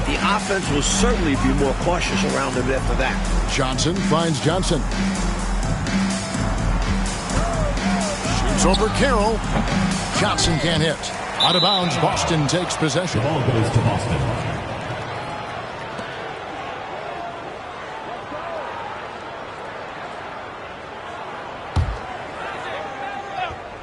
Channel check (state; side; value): identical; both; correlation 1.00